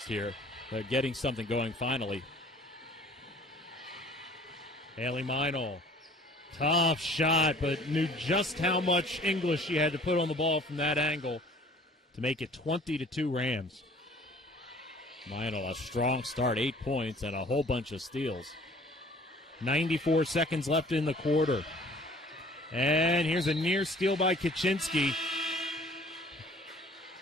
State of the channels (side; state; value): both; normal; correlation 0.52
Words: here, getting something going finally. Haley Meinl. Tough shot, but knew just how much English she had to put on the ball from that angle to make it 20-2 Rams. Meinl, a strong start, 8 points and a whole bunch of steals. 94 seconds left in the quarter. And here's a near steal by Kaczynski.